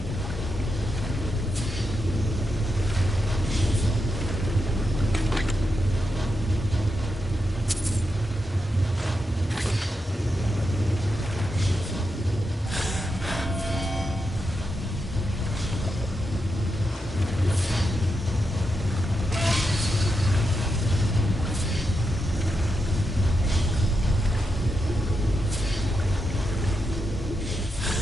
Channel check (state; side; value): normal; both; correlation 0.86